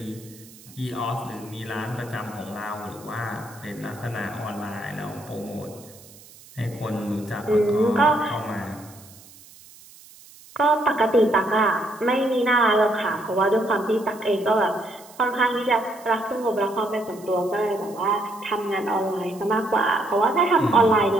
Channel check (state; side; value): noise; right; hiss, 22 dB below the sound